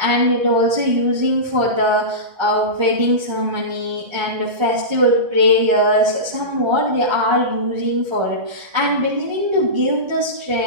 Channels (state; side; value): late; left; 1.3 ms